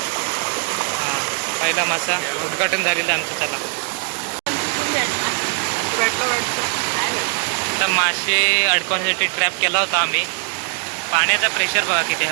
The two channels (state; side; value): quieter; left; 39.7 dB